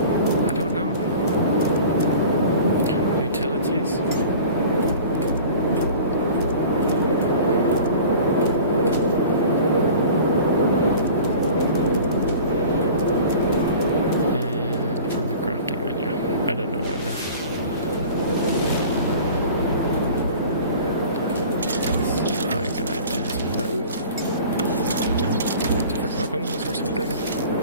I don't know. Utilities. And from the crafting menu. I don't know where the... Let's see if I can identify... Ooh. Different weapons or something.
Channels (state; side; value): inverted; both; correlation -0.42